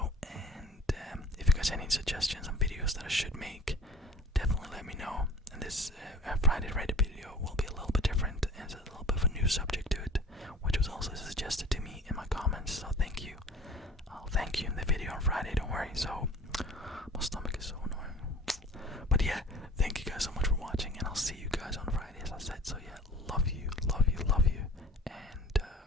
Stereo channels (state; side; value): normal; both; correlation 0.43